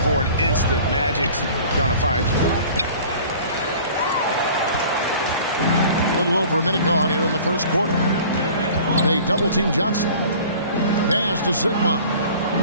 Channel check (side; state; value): both; inverted; correlation -0.46